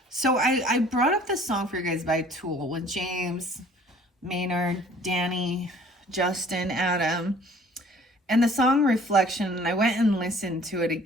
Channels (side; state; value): both; normal; correlation 0.53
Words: So I brought up this song for you guys by Tool with James, Maynard, Danny, Justin, Adam. And the song Reflection, and I went and listened to it